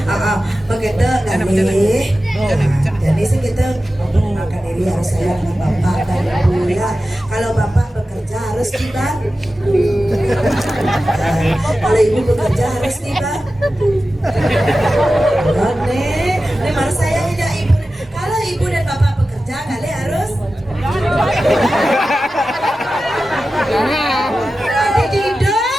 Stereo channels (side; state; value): both; normal; correlation 0.94